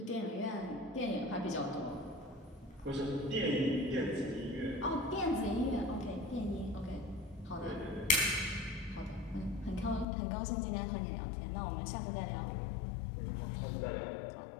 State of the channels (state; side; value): drops out; right; at 10.1 s